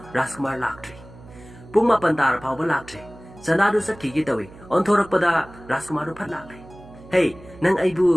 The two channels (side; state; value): right; noise; hum, 20 dB below the sound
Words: Rajkumar laktri. Pung mapantar pauba laktri. Chandadu sakki gitawi onthorak pada Rajkumar du phat lakle. Hey, nang